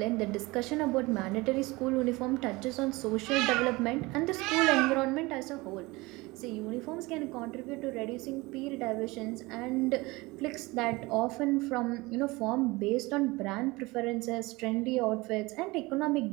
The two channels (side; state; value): left; quieter; 22.5 dB